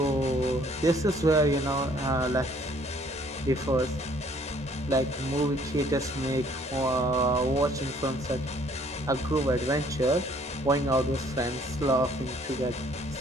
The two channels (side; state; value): both; normal; correlation 0.60